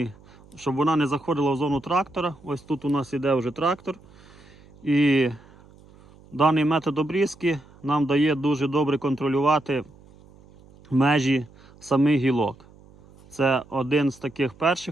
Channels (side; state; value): right; noise; hum, 25 dB below the sound